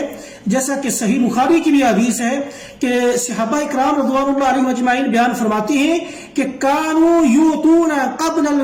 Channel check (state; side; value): identical; both; correlation 1.00